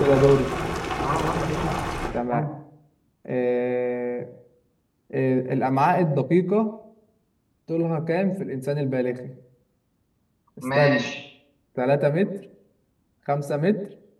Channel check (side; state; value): both; identical; correlation 1.00